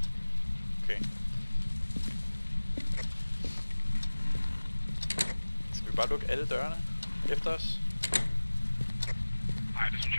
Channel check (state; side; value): inverted; both; correlation -1.00